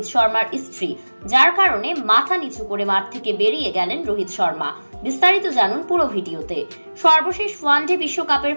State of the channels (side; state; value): both; inverted; correlation -1.00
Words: শর্মার স্ত্রী, যার কারণে মাথা নিচু করে মাঠ থেকে বেরিয়ে গেলেন রোহিত শর্মা। বিস্তারিত জানুন পুরো ভিডিওতে। সর্বশেষ ওয়ানডে বিশ্বকাপের